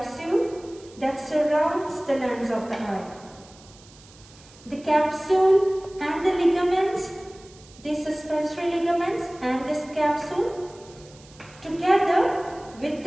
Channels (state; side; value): noise; right; hiss, 24 dB below the sound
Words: that surrounds the lens of the eye. The capsule and the ligaments, the suspensory ligaments and this capsule, together with